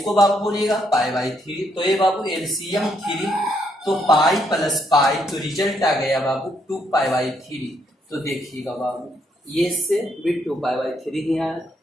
बाबू बोलिएगा पाई बाई 3। तो ये बाबू एलसीएम 3, तो पाई प्लस पाई, तो रिजल्ट आ गया बाबू 2 पाई बाई 3। तो देखिएगा बाबू ये से भी 2 पाई बाई 3 ही आया,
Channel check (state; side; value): normal; both; correlation 0.74